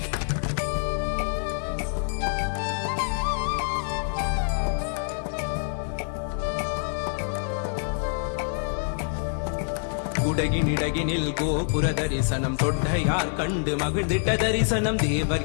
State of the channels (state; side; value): silent; right; 61 dB below the other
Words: குடகினிடகினில் கோபுர தரிசனம் கொட்டையார் கண்டு மகிழ்ந்திட்ட தரிசனம் தேவர்